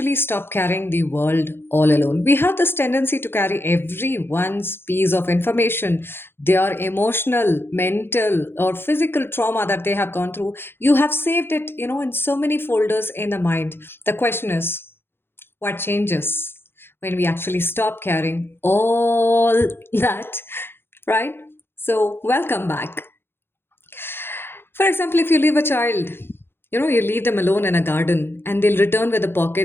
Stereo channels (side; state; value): right; late; 0.11 ms